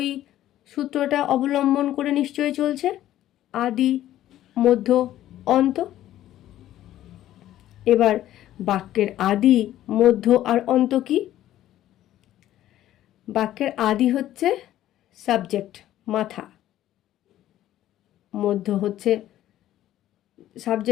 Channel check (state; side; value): quieter; right; 13.2 dB